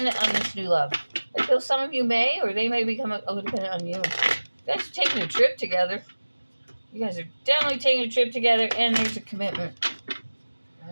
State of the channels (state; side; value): inverted; both; correlation -1.00